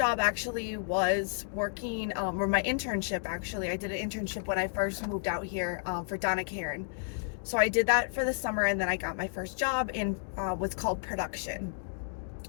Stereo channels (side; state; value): right; silent; digital silence